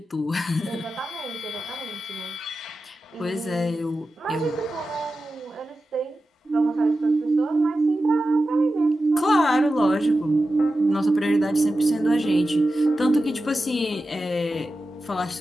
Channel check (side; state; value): both; normal; correlation 0.92